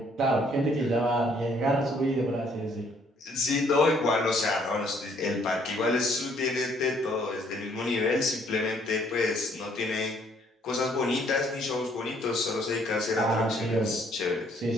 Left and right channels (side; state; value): both; normal; correlation 0.64